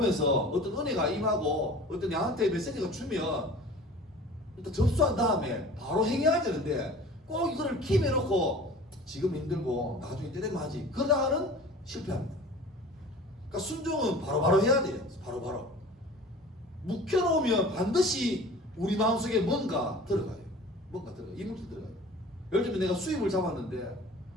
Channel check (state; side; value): normal; both; correlation 0.42